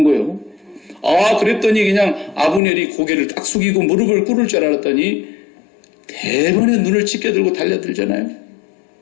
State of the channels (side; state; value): right; drops out; at 2.6 s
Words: 거예요. 그랬더니 그냥 아브넬이 고개를 딱 숙이고 무릎을 꿇을 줄 알았더니 대번에 눈을 찢겨들고 달려들잖아요.